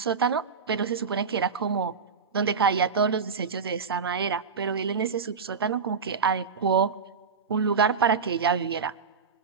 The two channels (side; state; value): left; quieter; 5.8 dB